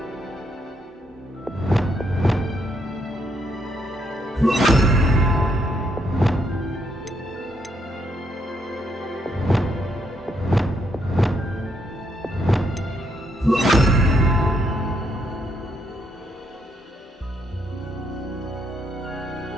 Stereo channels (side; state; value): both; normal; correlation 0.75